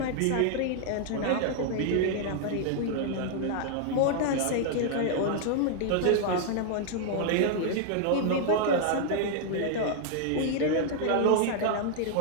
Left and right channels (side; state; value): both; different; correlation -0.01